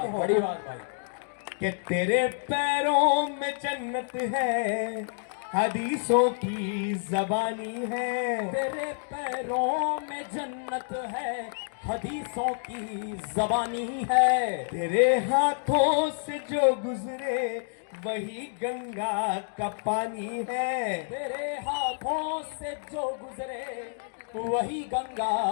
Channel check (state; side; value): silent; right; digital silence